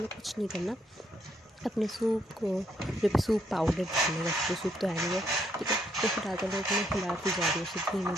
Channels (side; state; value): both; normal; correlation 0.73